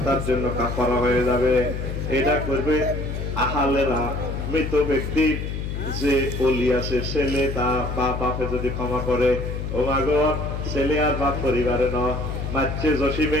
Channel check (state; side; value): noise; left; hum, 4 dB below the sound